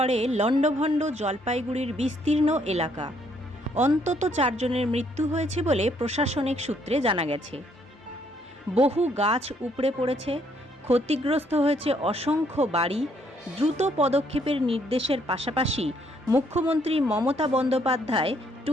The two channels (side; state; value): both; normal; correlation 0.69